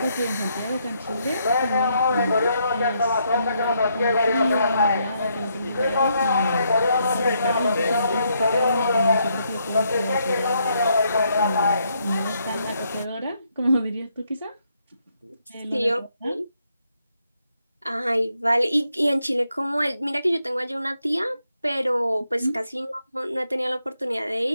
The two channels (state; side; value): inverted; both; correlation -0.76